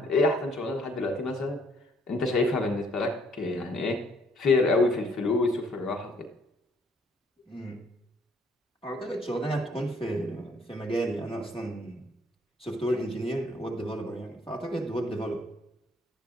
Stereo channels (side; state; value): both; normal; correlation 0.65